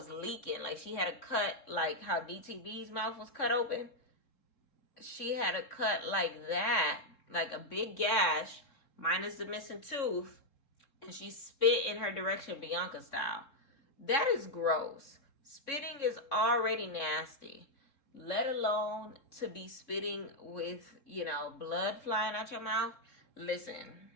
leaking. Like, she had a cut, like how DTV's mouth was cut open. She had a cut like that, like a big gash, minus the missing tooth, and she spit in her direction, Bianca style. That is gross. Spitting is already nasty, let alone to be spitting with, you know, blood flying out your mouth. Listen,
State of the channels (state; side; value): late; right; 3.6 ms